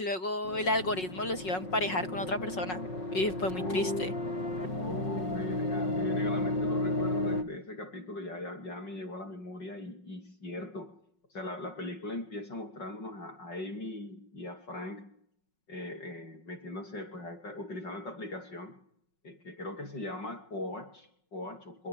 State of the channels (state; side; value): late; right; 5.4 ms